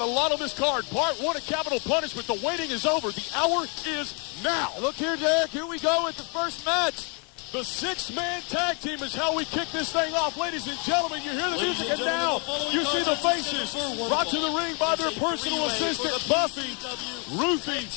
lot on this card. Part 1 of Capital Punishment. The waiting is over. The hour is now. Look here, Derek. Here we go with the first match. The 6-man tag team is how we kick this thing off. Ladies and gentlemen, you hear the music, and now you see the faces brought to the ring by their personal assistant, Buffy, Ruffy,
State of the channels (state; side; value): quieter; right; 35.6 dB